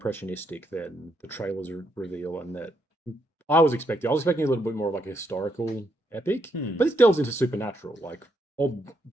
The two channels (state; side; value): normal; both; correlation 0.77